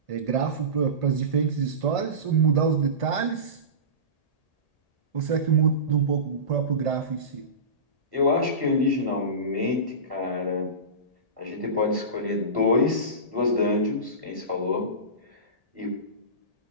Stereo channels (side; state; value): right; late; 1.8 ms